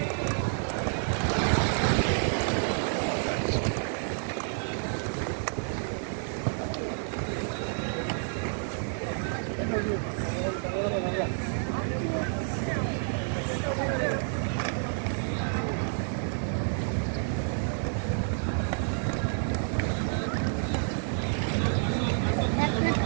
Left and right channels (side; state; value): left; silent; 58 dB below the other